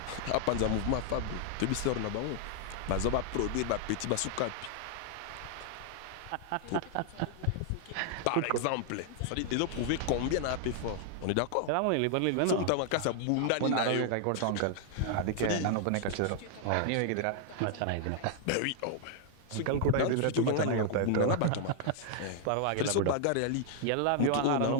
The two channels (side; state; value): both; different; correlation 0.00